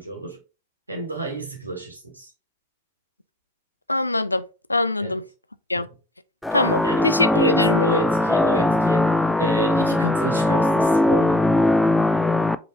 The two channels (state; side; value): normal; both; correlation 0.50